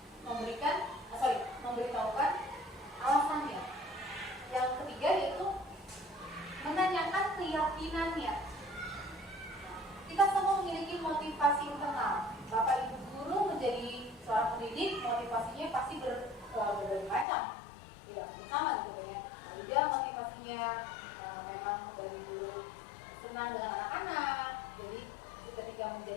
memberitahukan alasannya. Yang ketiga yaitu menanyakan keyakinannya. Kita semua memiliki motivasi internal. Bapak Ibu guru menjadi seorang pendidik, motivasinya pasti berbagai macam. Tidak sama gitu ya. Ada motivasinya memang dari dulu senang dengan anak-anak. Jadi ketika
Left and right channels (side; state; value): right; drops out; at 17.2 s